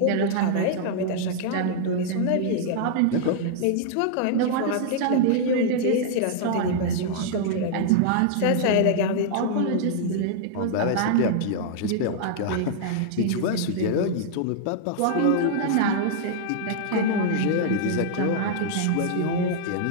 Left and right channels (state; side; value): different; both; correlation -0.01